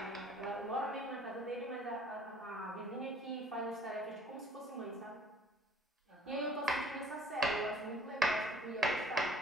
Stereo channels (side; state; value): both; normal; correlation 0.56